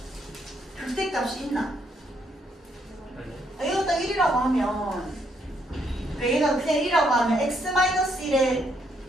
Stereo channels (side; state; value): both; normal; correlation 0.73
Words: 극대값이 있나? 아니? 얘가 딱 1이라고 하면, 그래, 얘가 그냥 1이라고 하면, x-1에,